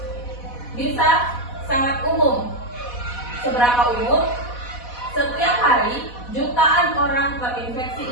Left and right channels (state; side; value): late; right; 4.1 ms